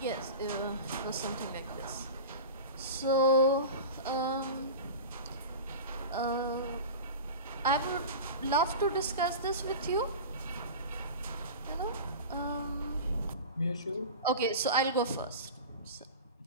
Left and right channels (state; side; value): inverted; both; correlation -0.31